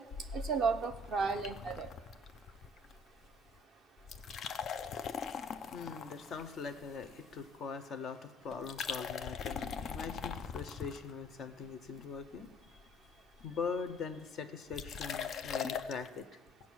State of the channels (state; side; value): normal; both; correlation 0.56